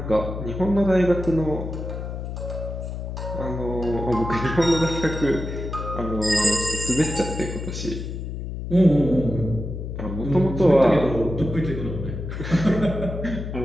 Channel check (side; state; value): left; noise; hum, 6 dB below the sound